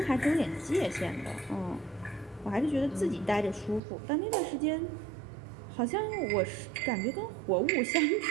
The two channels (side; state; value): left; drops out; at 3.8 s